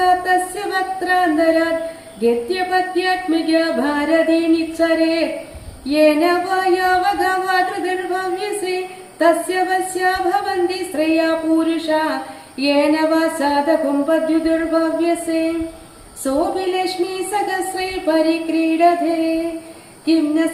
തസ്യ വക്ത്രാന്തരാത് ഗദ്യപദ്യാത്മിക ഭാരതീ നിച്ഛരേത് യേന വായാവഗവാതൃതിർഭവ്യസേ തസ്യ വസ്യാ ഭവന്തി ശ്രേയാ പൂരുഷാ യേന വാ സാധകുംപദ്യുതിർഭവ്യസേ സോപി ലക്ഷ്മീ സഹസ്രൈ പരിക്രീഡതേ കിം ന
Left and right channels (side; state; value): both; identical; correlation 1.00